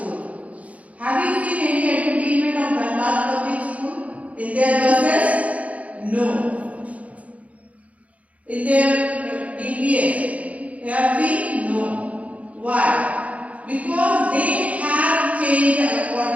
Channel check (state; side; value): late; left; 0.067 ms